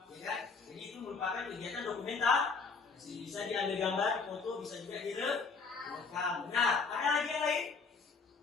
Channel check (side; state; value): right; quieter; 4.8 dB